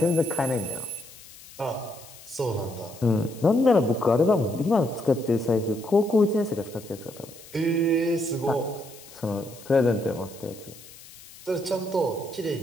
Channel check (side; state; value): left; noise; hiss, 19 dB below the sound